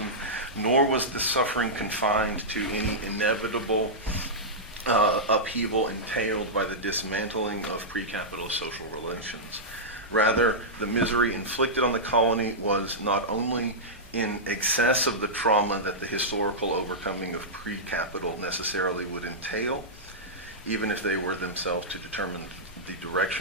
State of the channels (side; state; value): both; normal; correlation -0.11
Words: nor was the suffering confined to any inevitable upheaval entailed by the dismantling of pre-capitalist social relations. Rather, the misery inflicted on the colony was not only in excess of the trauma that the historical overcoming of pre-capital necessarily would entail, even if they were themselves to determine the